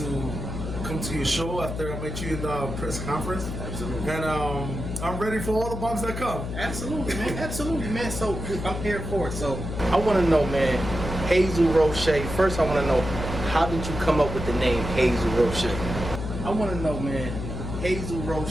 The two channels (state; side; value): noise; left; hum, 6 dB below the sound